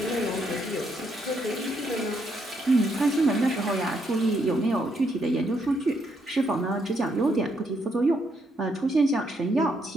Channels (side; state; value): both; normal; correlation 0.75